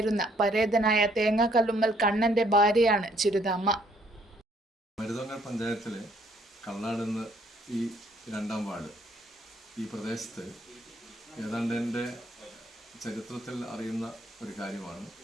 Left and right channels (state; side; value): normal; both; correlation 0.66